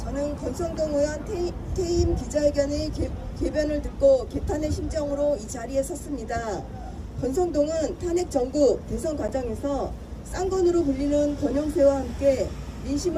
권성동 의원 퇴임 기자회견의 궤변을 듣고 개탄의 심정으로 이 자리에 섰습니다. 권성동은 탄핵 전국 대선 과정에서 쌍권으로 불리는 권영세와 함께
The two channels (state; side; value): identical; both; correlation 1.00